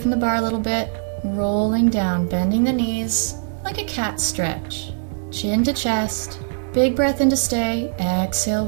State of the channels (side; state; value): left; silent; 65 dB below the other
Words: the bar a little bit, rolling down, bending the knees, like a cat stretch. Chin to chest, big breath in to stay, exhale,